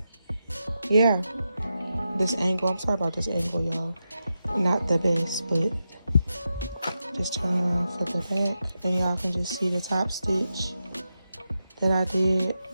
yeah, this angle, I'm sorry about this angle, y'all, not the best, but just turn around for the back and y'all can just see the top stitch that I did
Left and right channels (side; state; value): both; inverted; correlation -0.89